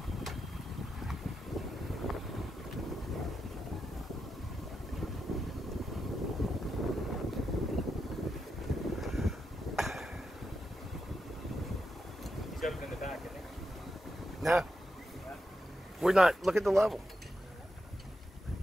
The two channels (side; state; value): both; normal; correlation 0.86